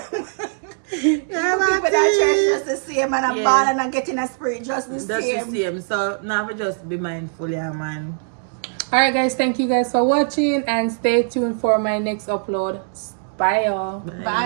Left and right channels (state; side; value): silent; left; 65 dB below the other